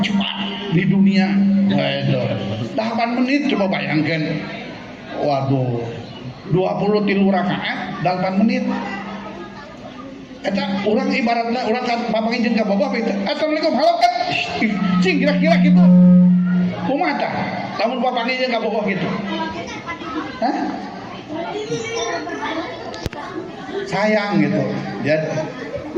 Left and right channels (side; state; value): both; identical; correlation 1.00